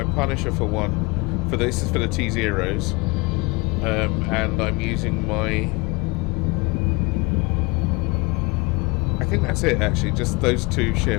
Punisher for one. This is for the T-Zeros. And I'm using my... I think that's it, actually, just those 2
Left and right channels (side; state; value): right; quieter; 25.9 dB